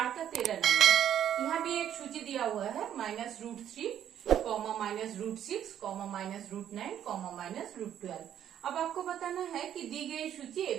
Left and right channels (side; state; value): left; quieter; 10.2 dB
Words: का 13 नंबर। यहाँ भी एक सूची दिया हुआ है, -√3, -√6, -√9, -√12। अब आपको बताना है कि दी गई सूची